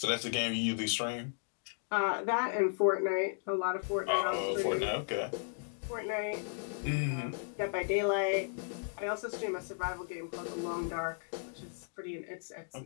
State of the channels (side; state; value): right; silent; digital silence